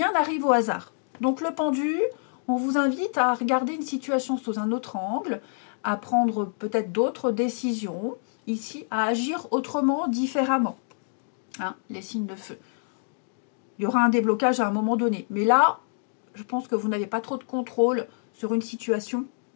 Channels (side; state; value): right; silent; 60 dB below the other